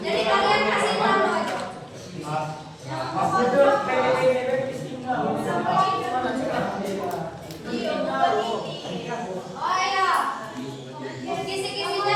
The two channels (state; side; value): identical; both; correlation 1.00